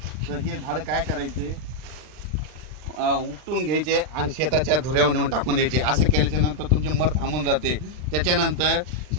तर हे झाड काय करायचे उपटून घ्यायचे आणि शेताच्या धुऱ्यावर नेऊन टाकून द्यायचे। असं केल्याच्या नंतर तुमचे मर थांबून जाते। त्याच्यानंतर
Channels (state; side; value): late; left; 39 ms